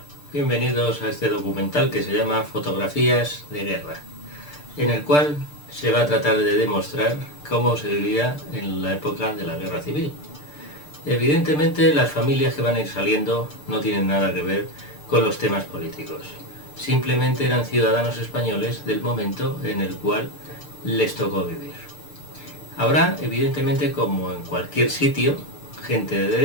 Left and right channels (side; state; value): right; late; 6.7 ms